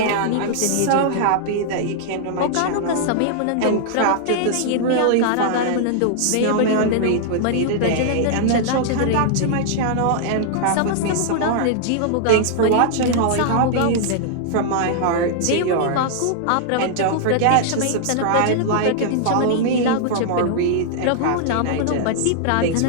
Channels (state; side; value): different; both; correlation -0.01